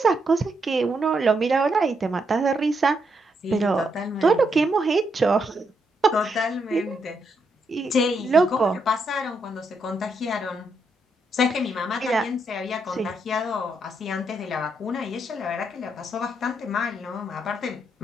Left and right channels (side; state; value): both; normal; correlation 0.78